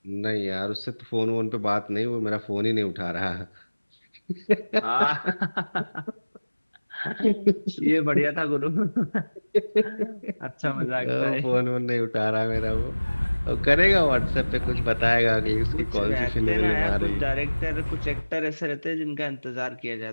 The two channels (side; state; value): both; inverted; correlation -1.00